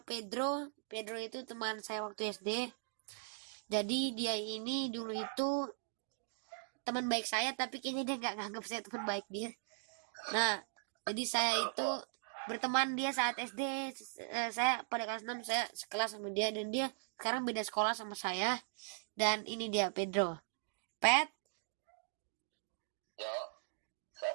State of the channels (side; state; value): left; silent; digital silence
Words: Pedro itu teman saya waktu SD. Jadi dia ini dulu itu teman baik saya, tapi kayaknya dia nggak nganggap saya teman baik dia. Nah, jadi saya itu berteman dia saat SD. Saya pada kelas 6 saya sekelas sama dia dan dia sekarang beda sekolah sama saya. Dan ini dia Pedro. Pet, Ya, Sap.